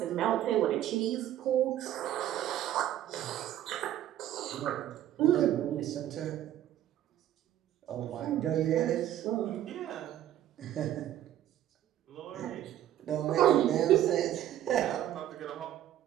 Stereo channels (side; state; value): left; quieter; 12.2 dB